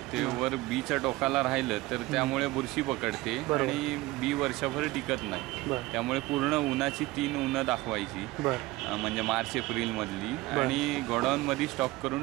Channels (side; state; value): left; quieter; 19.5 dB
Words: ते वर बीच्या टोकाला राहिलं तर त्यामुळे बुरशी पकडते आणि बी वर्षभर टिकत नाही. त्यामुळे पूर्ण उन्हाची 3 उन्हं दाखवायची म्हणजे मार्च-एप्रिल मधली आणि गोडाऊनमध्ये स्टॉक